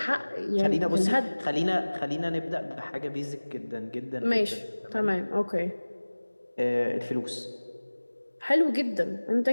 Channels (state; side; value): inverted; both; correlation -1.00